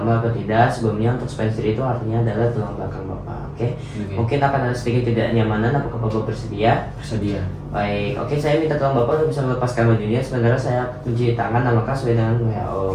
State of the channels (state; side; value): identical; both; correlation 1.00